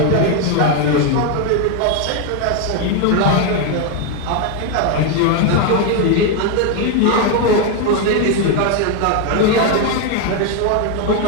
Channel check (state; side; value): different; both; correlation 0.01